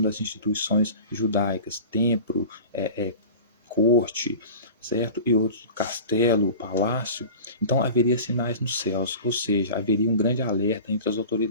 das instituições judaicas, templo, corte, certo? E outros, castelo, palácio. Então haveria sinais nos céus, ou seja, haveria um grande alerta entre as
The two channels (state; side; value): inverted; both; correlation -0.37